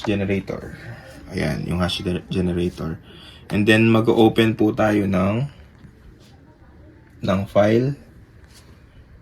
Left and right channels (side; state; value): both; identical; correlation 1.00